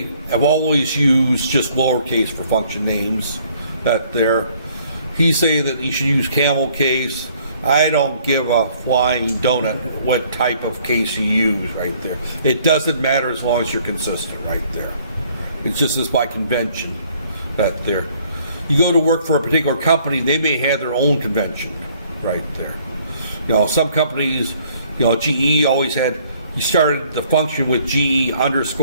have always used just lowercase for function names. That there. He's saying that you should use camel case. I don't give a flying donut what type of case you use right there. It doesn't matter as long as you're consistent right there. It's just as by convention that there. You go to work for a particular company, they may have their own convention right there. Some companies, GE always had, you started the function with GE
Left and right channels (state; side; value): inverted; both; correlation -0.61